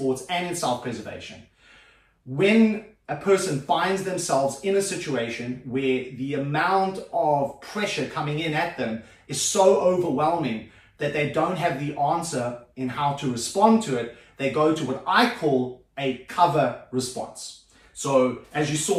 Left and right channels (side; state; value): both; identical; correlation 1.00